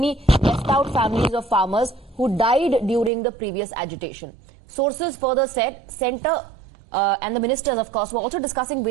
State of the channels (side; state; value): left; drops out; at 3.1 s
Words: left out families of farmers who died during the previous agitation. Sources further said centre and the ministers, of course, were also discussing